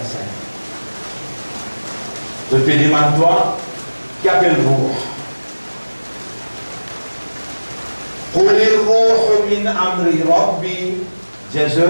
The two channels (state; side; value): inverted; both; correlation -1.00